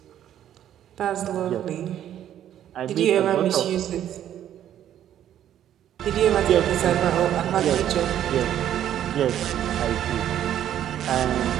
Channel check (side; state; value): left; quieter; 10.9 dB